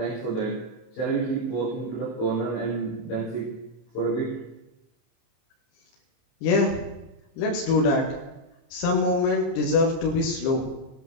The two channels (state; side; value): late; right; 30 ms